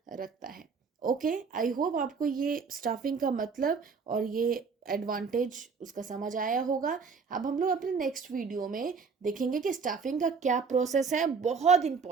रखता है। ओके, आई होप आपको ये स्टाफिंग का मतलब और ये एडवांटेज उसका समझ आया होगा। अब हम लोग अपने नेक्स्ट वीडियो में देखेंगे कि स्टाफिंग का क्या प्रोसेस है। बहुत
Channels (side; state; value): left; quieter; 5.3 dB